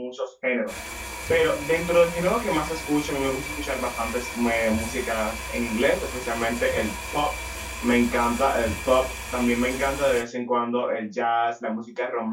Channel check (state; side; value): identical; both; correlation 1.00